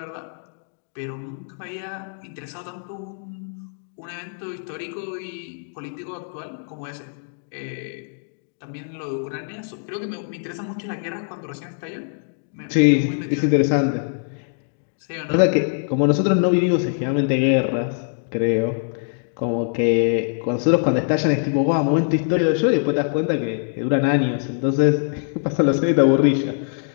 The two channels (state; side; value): silent; right; digital silence